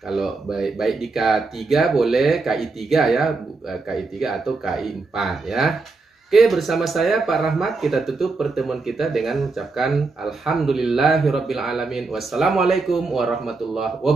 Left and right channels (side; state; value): left; quieter; 3.8 dB